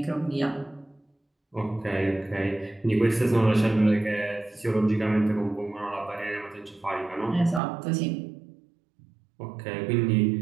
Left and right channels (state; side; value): drops out; left; at 7.6 s